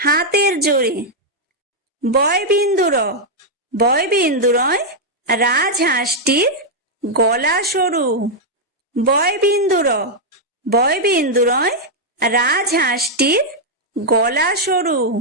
জোরে। বয়বিন্দুর বয়বিন্দুরয় রাজহাঁসটির গলা সরু। বয়বিন্দুর বয়বিন্দুরয় রাজহাঁসটির গলা সরু।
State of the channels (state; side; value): normal; both; correlation -0.03